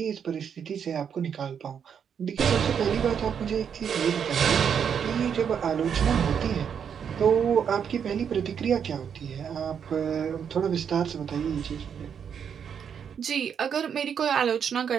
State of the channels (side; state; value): left; quieter; 7.6 dB